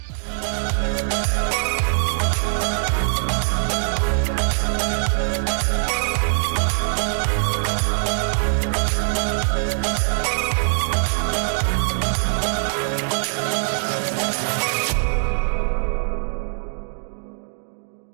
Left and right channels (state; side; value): silent; left; digital silence